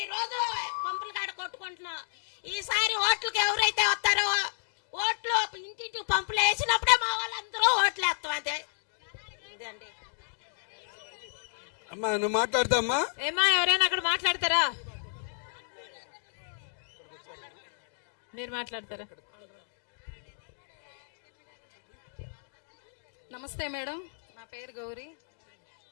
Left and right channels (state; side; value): silent; right; digital silence